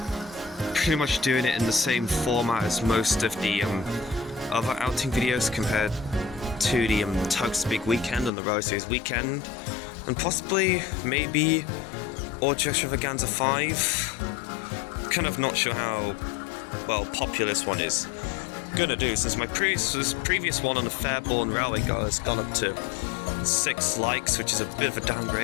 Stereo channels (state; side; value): drops out; right; at 8.3 s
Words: pretty much doing it in the same format as most of the other outing videos compared to the Tugs Big Weekend and the Railway Series weekend, and possibly, maybe, Awdry Extravaganza 5, kind of not sure how, well, popular this one is gonna do, since my previous one on the Fairbourne Railway has gone up to 6 likes, which is a bit of a